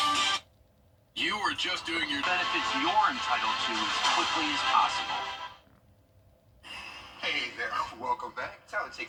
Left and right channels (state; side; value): identical; both; correlation 1.00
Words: You are just doing your benefits you're entitled to as quickly as possible. Hey there, welcome back. Time to